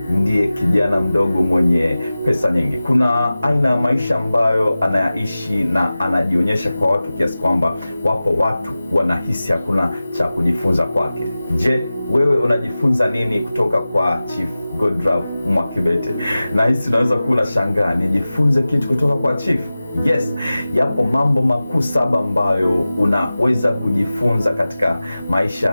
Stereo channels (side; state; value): both; inverted; correlation -0.96